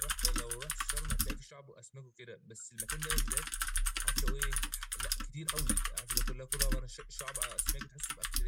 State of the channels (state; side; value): identical; both; correlation 1.00